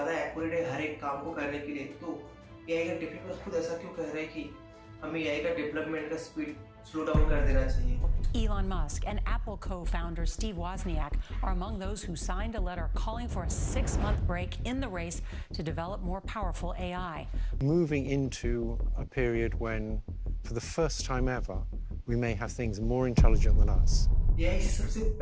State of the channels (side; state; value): both; identical; correlation 1.00